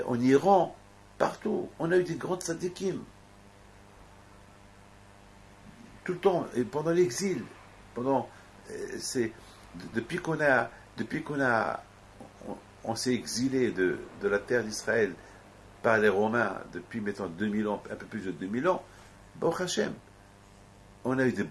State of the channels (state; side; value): identical; both; correlation 1.00